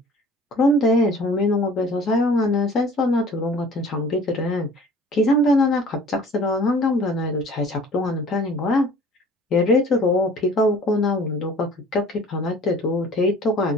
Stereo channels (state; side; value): normal; both; correlation 0.49